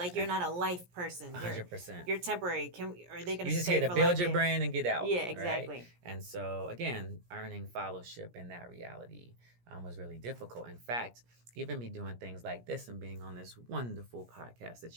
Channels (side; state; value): left; late; 17 ms